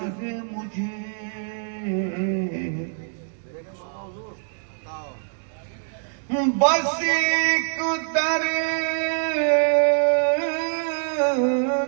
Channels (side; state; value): left; silent; digital silence